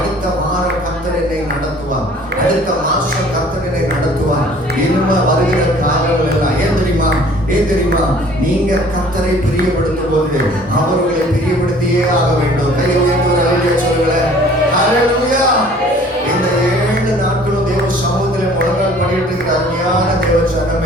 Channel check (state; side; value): normal; both; correlation 0.52